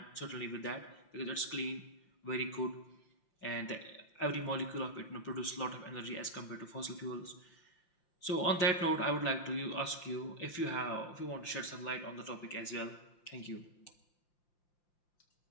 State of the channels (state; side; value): late; right; 5.8 ms